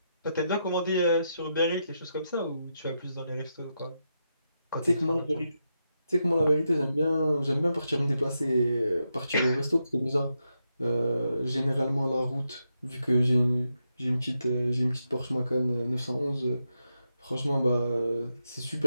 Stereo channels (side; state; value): both; inverted; correlation -0.85